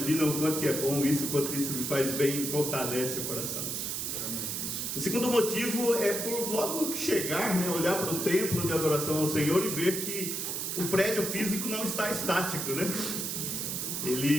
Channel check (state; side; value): noise; right; hiss, 2 dB below the sound